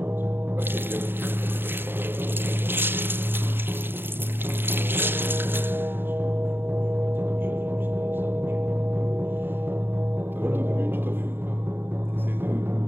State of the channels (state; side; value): late; left; 0.10 ms